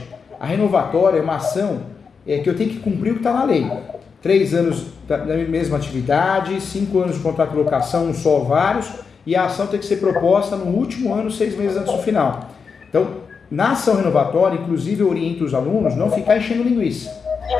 A renovatória é uma ação que eu tenho que cumprir o que está na lei. 3 anos da mesma atividade, 5 anos de contrato de locação, um só ou vários, e a ação tem que ser proposta no último ano, 6 meses antes do final. Então, na ação renovatória, inclusive eu oriento os alunos não ficar enchendo linguiça.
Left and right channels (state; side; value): quieter; right; 5.6 dB